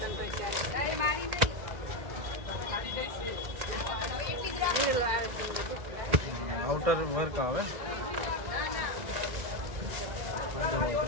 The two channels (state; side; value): late; left; 2.0 ms